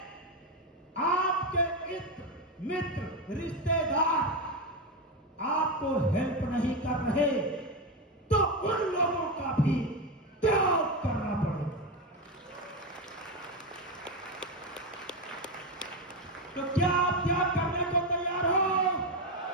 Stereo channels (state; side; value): normal; both; correlation 0.12